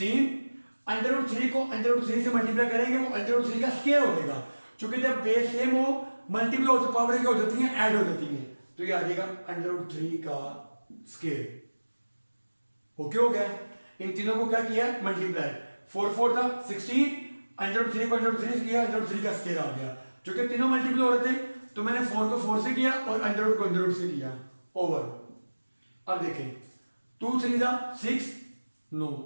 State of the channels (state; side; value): inverted; both; correlation -1.00